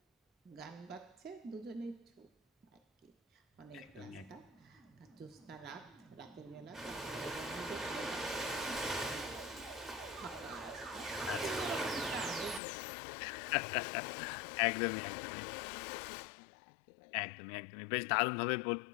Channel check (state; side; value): drops out; right; at 12.6 s